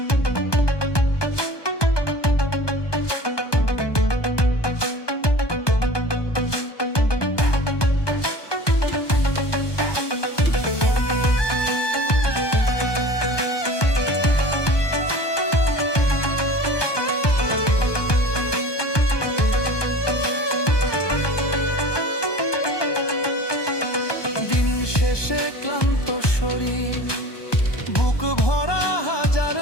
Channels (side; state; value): right; late; 1.2 ms